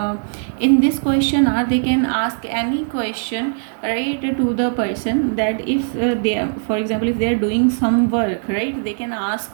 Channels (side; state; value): left; silent; 66 dB below the other